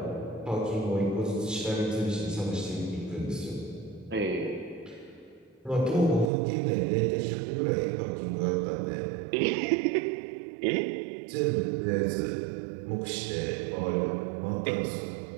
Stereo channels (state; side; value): drops out; left; at 6.3 s